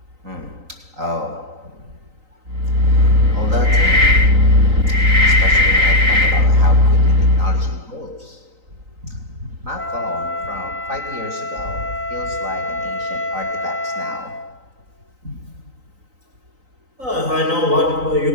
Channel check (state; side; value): late; left; 3.9 ms